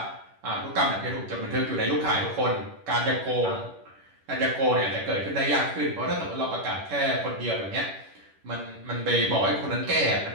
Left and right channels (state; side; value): late; left; 10 ms